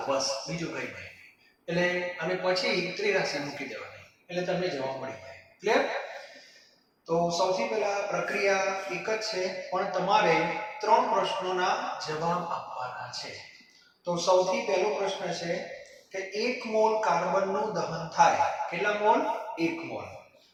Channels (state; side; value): identical; both; correlation 1.00